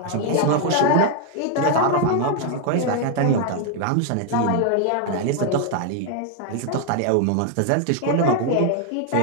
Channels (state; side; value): different; both; correlation 0.01